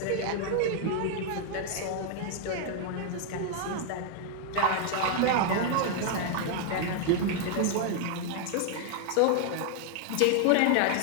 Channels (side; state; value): both; different; correlation 0.00